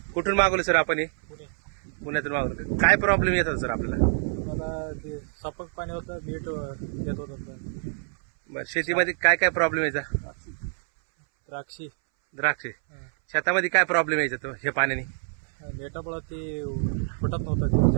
कुठून मागवलं सर आपण हे? पुणे. पुण्यातून मागवलं. काय प्रॉब्लेम येतात सर आपल्याला? मला ते सपक पाणी होतं, मीठ येत होतं. बरं, शेतीमध्ये काय काय प्रॉब्लेम यायचा? द्राक्षी द्राक्षे शेतामध्ये काय प्रॉब्लेम यायचा तो हे पाण्याने? मेटामुळे ते फुटत नव्हतं,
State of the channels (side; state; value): left; silent; 61 dB below the other